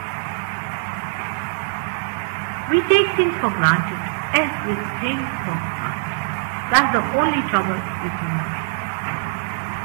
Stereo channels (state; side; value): silent; left; digital silence